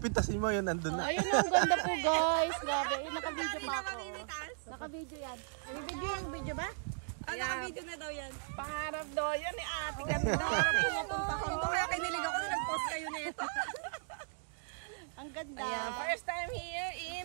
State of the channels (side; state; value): left; silent; digital silence